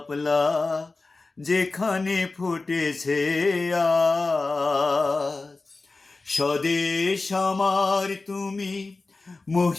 যেখানে ফুটেছে আজ। স্বদেশ আমার তুমি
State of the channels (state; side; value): quieter; right; 3.6 dB